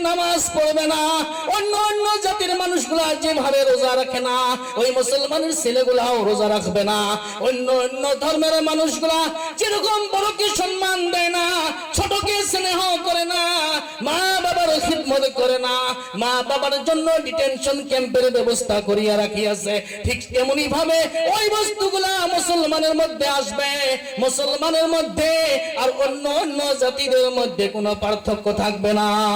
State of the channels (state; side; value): identical; both; correlation 1.00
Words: নামাজ পড়বে না। অন্য অন্য জাতির মানুষগুলা যেভাবে রোজা রাখে না, ওই মুসলমানের ছেলেগুলাও রোজা রাখবে না। অন্য অন্য ধর্মের মানুষগুলা যেরকম বড়কে সম্মান দেয় না, ছোটকে স্নেহ করে না, মা বাবার খিদমত করে না, মা বাবার জন্য ডিটেনশন ক্যাম্পের ব্যবস্থা করিয়া রাখিয়াছে, ঠিক তেমনি ভাবে ওই বস্তুগুলা মুসলমানের মধ্যে আসবে। মুসলমানের মধ্যে আর অন্য অন্য জাতিদের মধ্যে কোনো পার্থক্য থাকবে না।